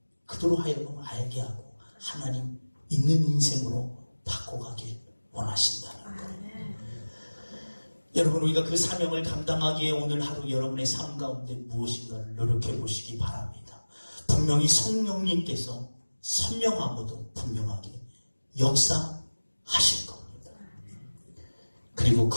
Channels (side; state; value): both; inverted; correlation -1.00